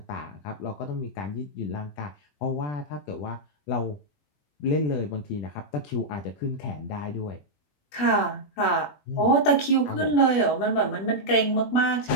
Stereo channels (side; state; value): right; late; 20 ms